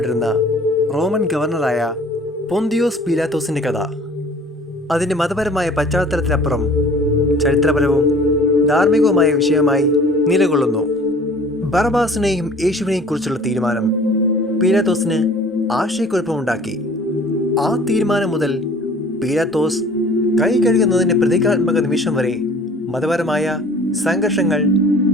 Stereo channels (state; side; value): normal; both; correlation 0.49